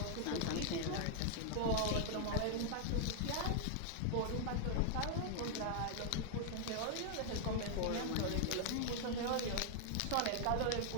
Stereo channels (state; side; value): different; both; correlation 0.00